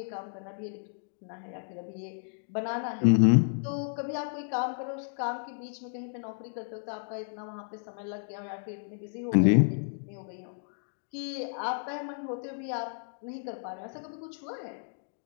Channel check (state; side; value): silent; right; digital silence